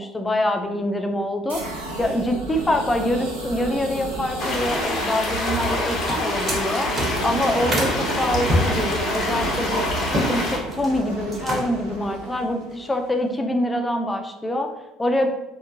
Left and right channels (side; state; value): both; normal; correlation 0.69